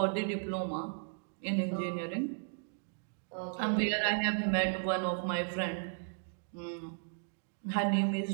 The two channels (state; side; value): silent; left; digital silence